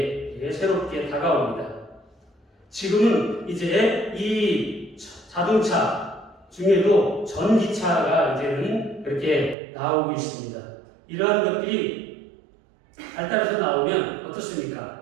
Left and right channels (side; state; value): left; drops out; at 9.6 s